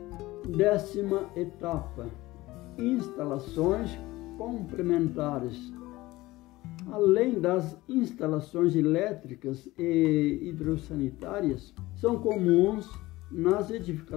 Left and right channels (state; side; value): quieter; right; 18.8 dB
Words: Décima etapa: instalações complementares. Além das instalações elétricas e hidrossanitárias, são comuns nas